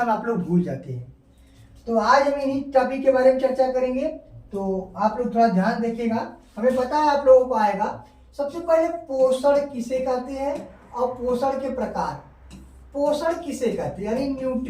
में आप लोग भूल जाते हैं। तो आज हम इन्हीं टॉपिक के बारे में चर्चा करेंगे। तो आप लोग थोड़ा ध्यान देखिएगा। हमें पता है आप लोगों को आएगा। सबसे पहले पोषण किसे कहते हैं और पोषण के प्रकार। पोषण किसे कहते हैं यानी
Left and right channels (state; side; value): identical; both; correlation 1.00